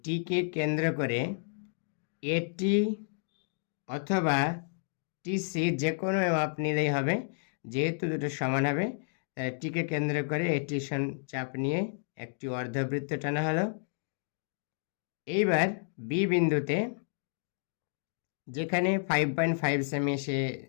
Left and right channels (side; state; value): right; silent; digital silence